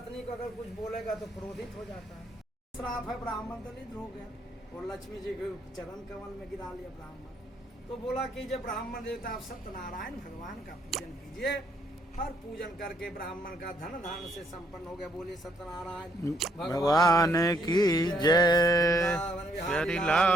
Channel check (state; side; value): normal; both; correlation 0.70